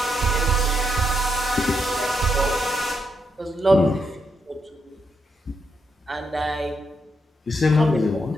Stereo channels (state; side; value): normal; both; correlation 0.81